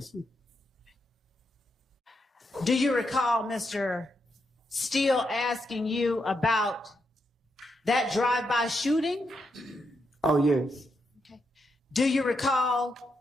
me. Do you recall Mr. Steele asking you about that drive-by shooting? Oh, yes. Okay. Do you recall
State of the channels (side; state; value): both; normal; correlation 0.82